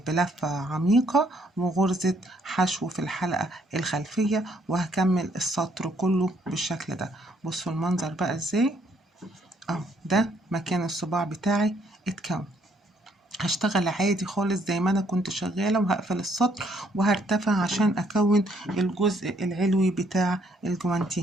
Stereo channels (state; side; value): normal; both; correlation 0.68